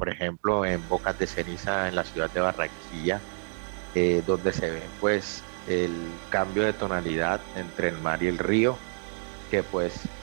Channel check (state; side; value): silent; left; digital silence